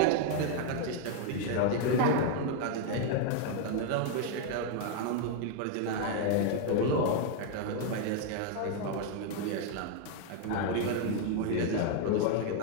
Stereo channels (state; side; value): different; both; correlation 0.00